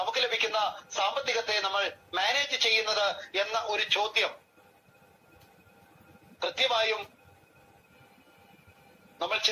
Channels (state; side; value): identical; both; correlation 1.00